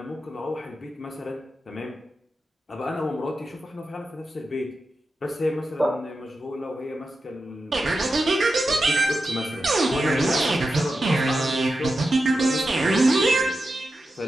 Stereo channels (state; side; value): normal; both; correlation 0.90